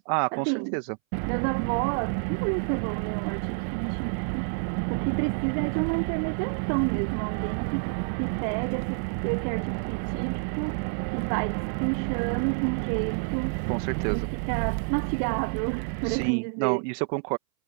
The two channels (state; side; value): silent; left; 59 dB below the other